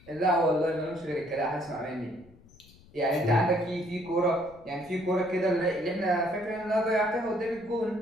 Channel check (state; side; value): noise; left; rumble, 25 dB below the sound